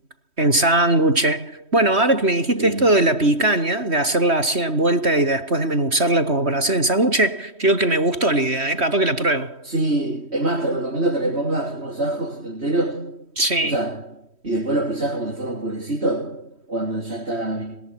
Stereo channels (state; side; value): late; left; 3.1 ms